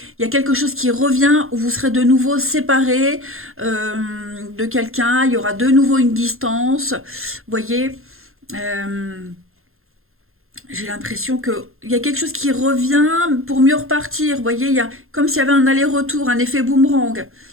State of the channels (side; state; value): left; late; 0.61 ms